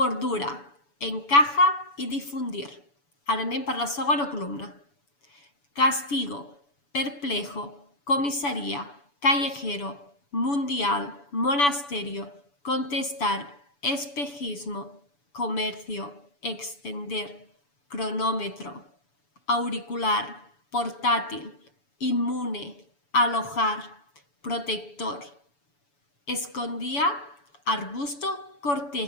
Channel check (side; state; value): right; late; 7.0 ms